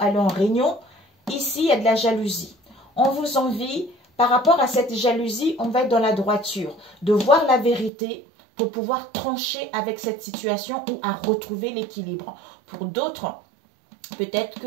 aller en réunion, ici, il y a de la jalousie. On vous envie... Par rapport à cette jalousie, on va être dans la droiture, de voir la vérité pour pouvoir trancher avec cette situation ou à retrouver l'équilibre. Pour d'autres, peut-être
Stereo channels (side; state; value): left; drops out; at 7.9 s